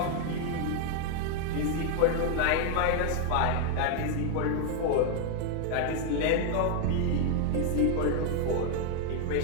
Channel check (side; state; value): both; different; correlation 0.00